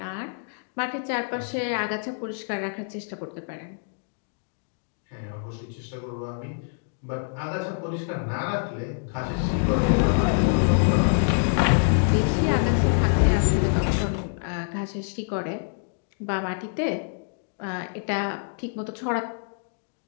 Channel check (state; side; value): silent; right; digital silence